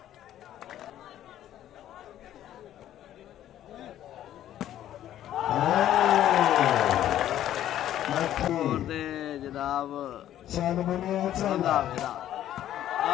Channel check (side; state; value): right; quieter; 12.0 dB